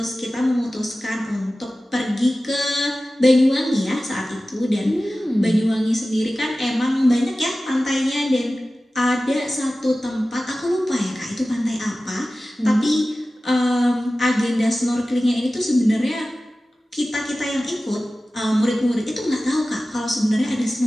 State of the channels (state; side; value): normal; both; correlation 0.96